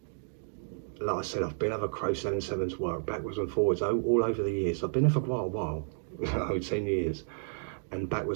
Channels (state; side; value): silent; left; digital silence